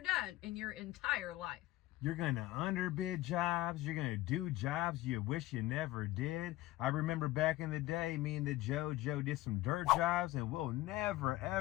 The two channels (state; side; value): quieter; right; 17.0 dB